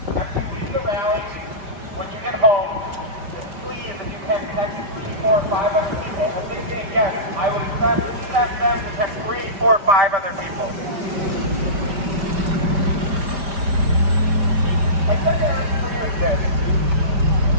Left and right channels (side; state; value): left; late; 5.1 ms